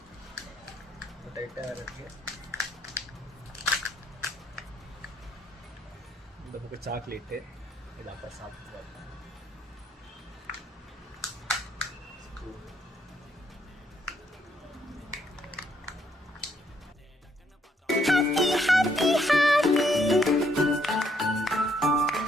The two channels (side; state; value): both; normal; correlation 0.71